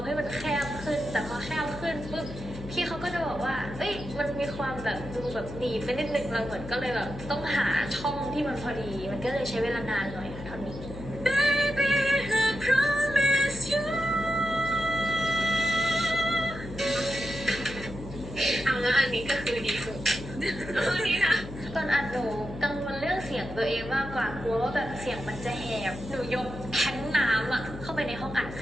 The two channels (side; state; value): left; noise; hum, 12 dB below the sound